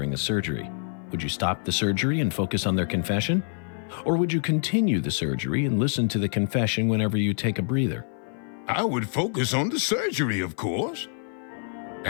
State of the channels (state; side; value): silent; right; 56 dB below the other